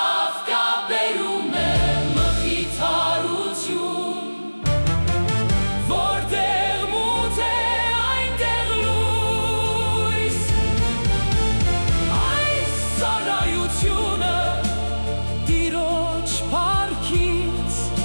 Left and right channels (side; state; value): both; inverted; correlation -1.00